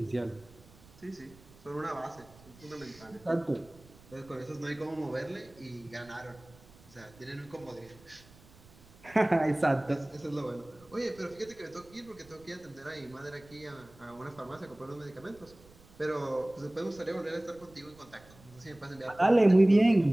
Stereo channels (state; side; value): noise; right; rumble, 24 dB below the sound